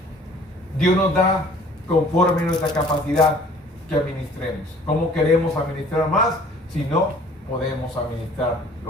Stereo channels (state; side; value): normal; both; correlation 0.52